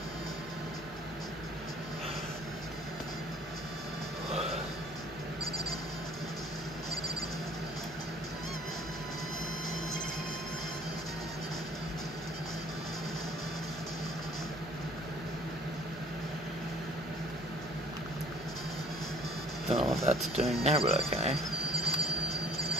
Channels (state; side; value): normal; both; correlation 0.54